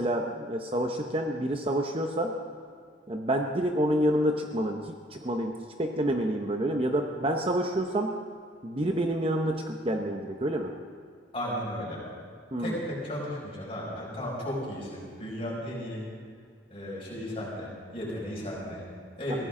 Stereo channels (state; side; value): normal; both; correlation 0.59